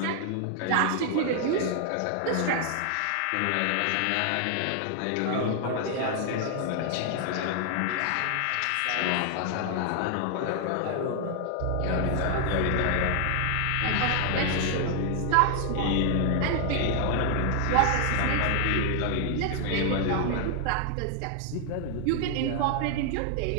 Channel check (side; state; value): both; different; correlation 0.00